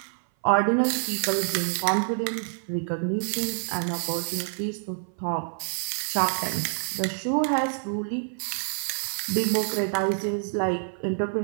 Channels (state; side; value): silent; left; 57 dB below the other